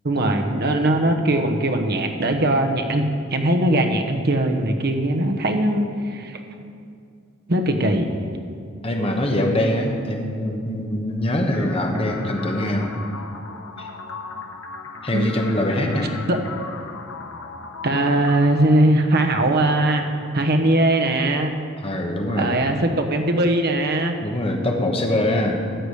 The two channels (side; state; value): both; normal; correlation 0.53